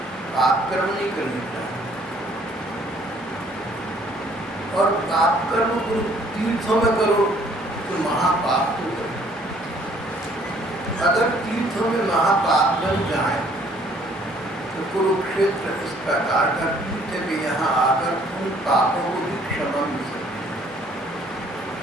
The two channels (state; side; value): normal; both; correlation 0.60